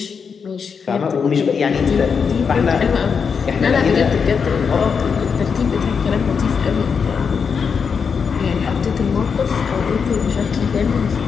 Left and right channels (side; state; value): right; quieter; 6.1 dB